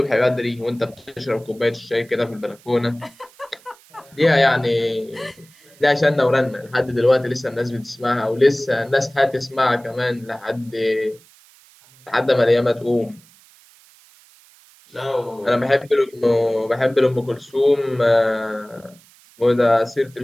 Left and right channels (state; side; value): noise; right; hiss, 27 dB below the sound